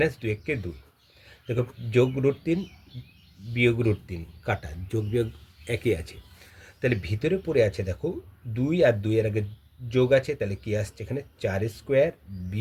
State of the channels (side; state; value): both; identical; correlation 1.00